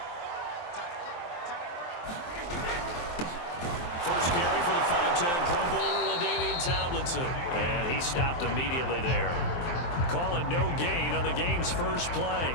And he stopped immediately there. Call it no gain on the game's first play.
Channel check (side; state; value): right; late; 23 ms